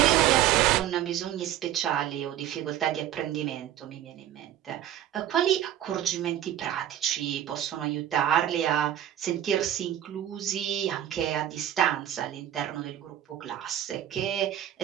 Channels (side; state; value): left; quieter; 11.6 dB